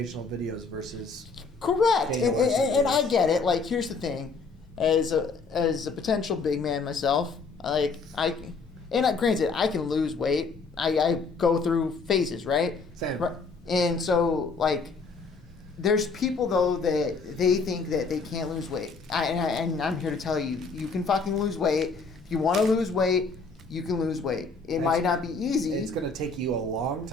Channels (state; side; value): quieter; right; 4.4 dB